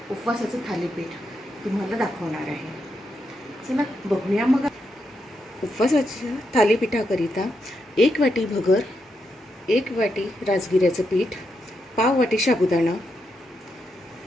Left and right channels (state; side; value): normal; both; correlation 0.83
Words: उपवासाचं थालीपीठ तुम्हाला दाखवणार आहे। चला बघूया मग। उपवासाच्या थालीपीठाकरिता 1 वाटी भगर, 1 वाटी राजगिऱ्याचं पीठ, पाव वाटी साबुदाणा,